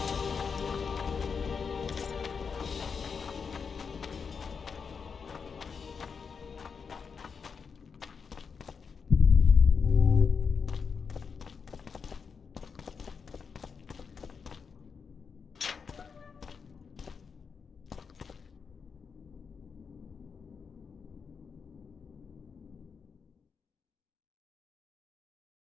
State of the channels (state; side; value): quieter; right; 5.8 dB